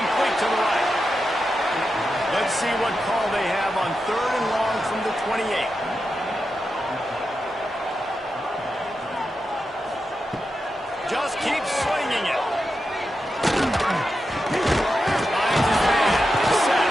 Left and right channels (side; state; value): both; normal; correlation 0.89